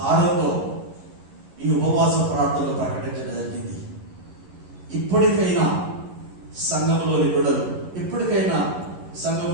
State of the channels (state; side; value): late; left; 11 ms